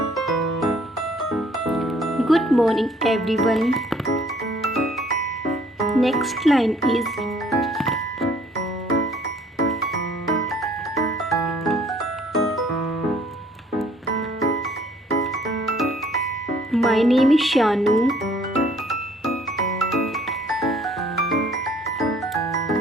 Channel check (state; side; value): normal; both; correlation 0.59